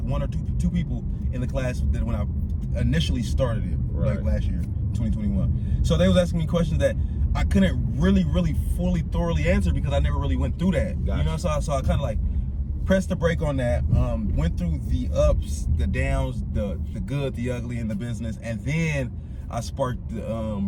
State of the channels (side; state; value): both; identical; correlation 1.00